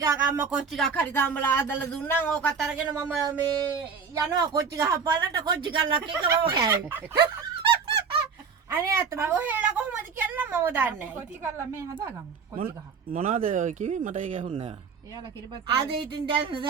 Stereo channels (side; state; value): left; quieter; 5.8 dB